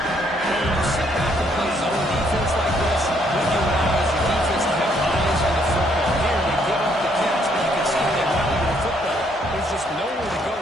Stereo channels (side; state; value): both; normal; correlation 0.69